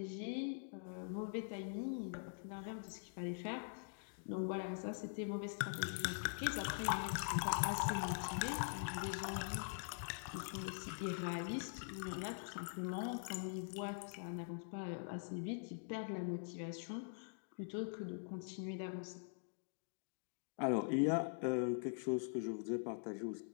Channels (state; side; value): silent; right; digital silence